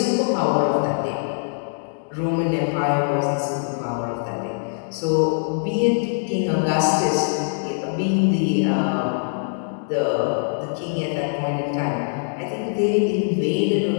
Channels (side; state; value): right; silent; digital silence